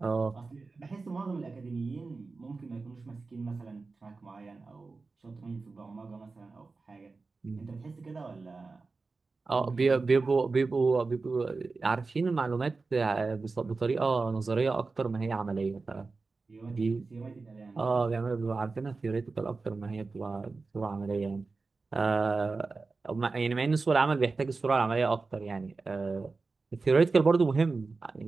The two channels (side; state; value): left; quieter; 4.0 dB